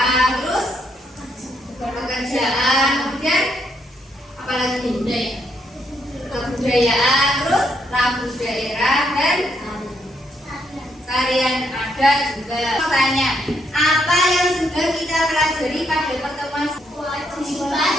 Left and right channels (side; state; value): both; normal; correlation 0.75